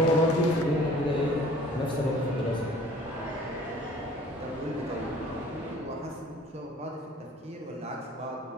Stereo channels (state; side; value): normal; both; correlation 0.50